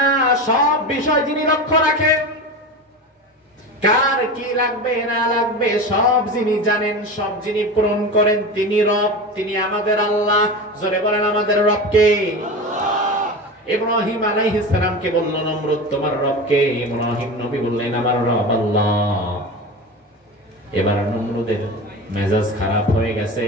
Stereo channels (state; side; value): normal; both; correlation 0.27